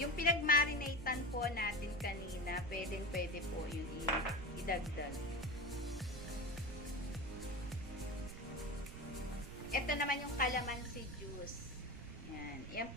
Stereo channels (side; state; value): right; noise; rumble, 10 dB below the sound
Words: pinagmarinatean po natin kanina, pwede po yun idagdag. Ito naman yung calamansi juice. Ayan. Yan